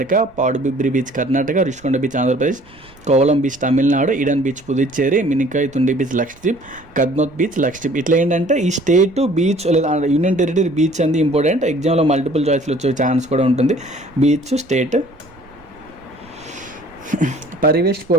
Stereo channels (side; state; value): right; noise; rumble, 26 dB below the sound